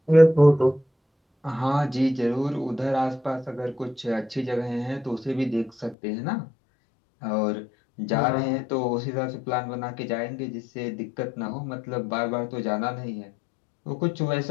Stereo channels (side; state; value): right; drops out; at 6.0 s